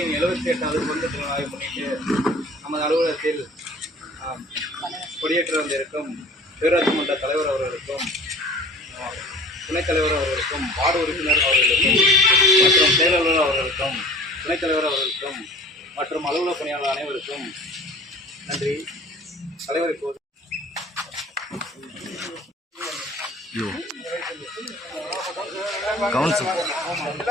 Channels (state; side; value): normal; both; correlation 0.45